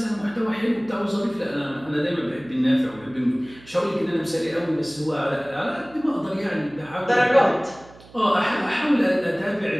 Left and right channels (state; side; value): noise; right; hum, 23 dB below the sound